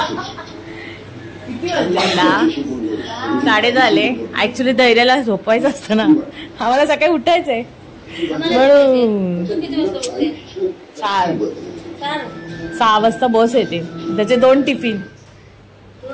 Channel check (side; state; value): both; identical; correlation 1.00